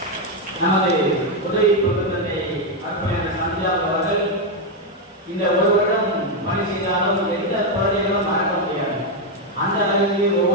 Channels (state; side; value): normal; both; correlation 0.04